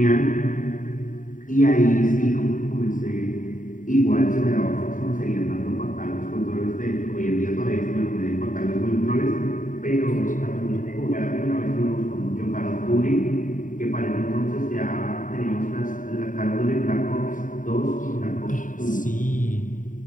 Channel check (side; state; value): right; late; 0.38 ms